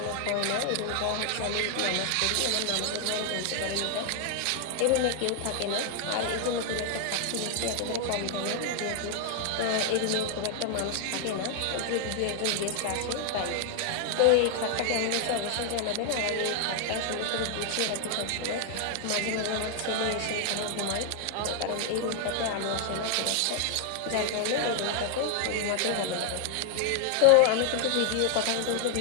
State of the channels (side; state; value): both; different; correlation 0.00